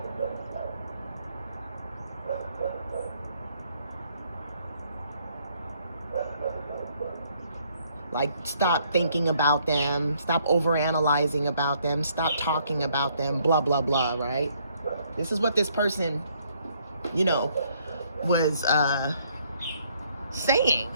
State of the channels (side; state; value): both; inverted; correlation -0.68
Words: Like, stop thinking about them, stop overanalyzing about them, stop talking about them, blah, blah, blah, right? This is what this person, was saying.